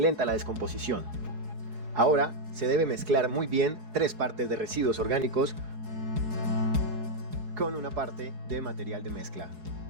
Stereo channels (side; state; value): left; late; 4.7 ms